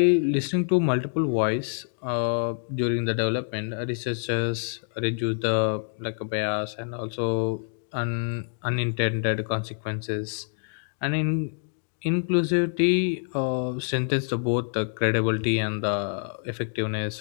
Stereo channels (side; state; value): right; silent; digital silence